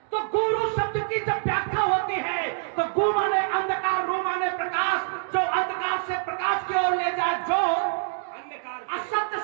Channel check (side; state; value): left; silent; digital silence